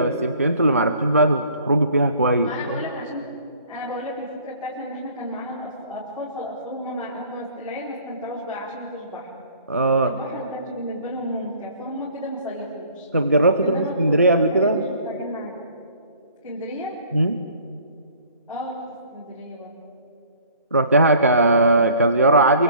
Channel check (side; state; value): both; inverted; correlation -0.54